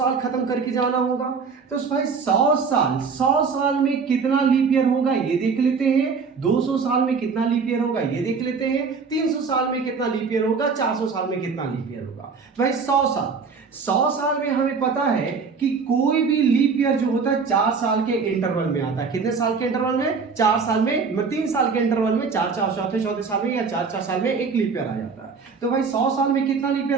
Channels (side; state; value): left; quieter; 5.2 dB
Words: खत्म करके जाना होगा। तो भाई 100 साल में कितना लीप ईयर होगा ये देख लेते हैं। 200 साल में कितना लीप ईयर होगा ये देख लेते हैं। 300 साल में कितना लीप ईयर होगा, 400 साल में कितना लीप ईयर होगा। भाई 100 साल 100 साल में हमें पता है कि कोई भी लीप ईयर जो होता है 4 साल के इंटरवल में आता है। कितने साल के इंटरवल में? 4 साल में, 3 साल के इंटरवल में, 4 चौथे साल में या 4 साल में एक लीप ईयर आ जाता है। तो भाई 100 साल में कितना लीप